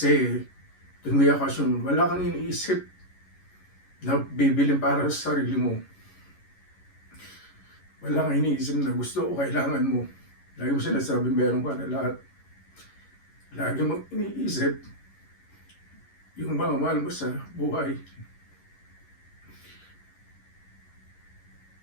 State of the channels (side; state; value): right; late; 11 ms